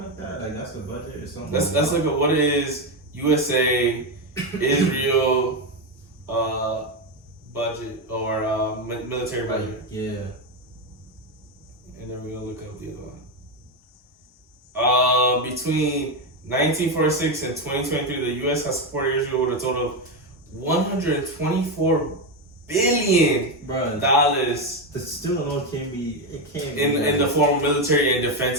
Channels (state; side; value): normal; both; correlation 0.10